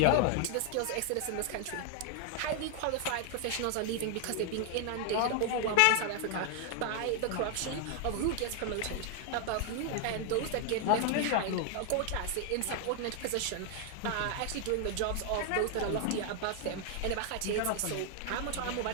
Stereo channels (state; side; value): different; both; correlation 0.00